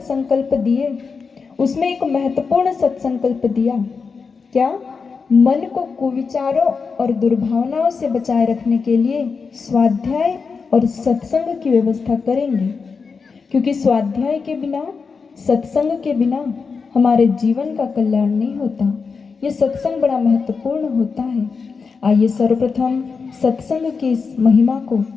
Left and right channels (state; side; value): quieter; right; 5.1 dB